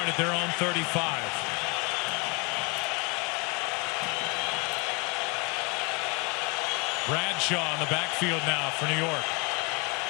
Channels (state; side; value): quieter; right; 31.0 dB